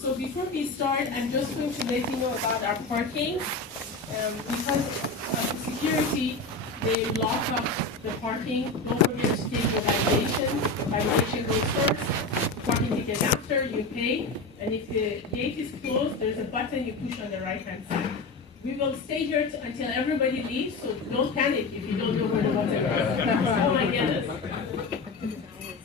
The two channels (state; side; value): quieter; right; 3.4 dB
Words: before we start, I'm just going to let you know about our parking. Because of security, they lock up the parking. Don't forget to take your violation goes first. Parking ticket after, you pay. And if the gate is closed, there's a button you push on the right-hand side. We will stay here until everybody leaves, so don't panic if you don't know where the button is. Oh my goodness.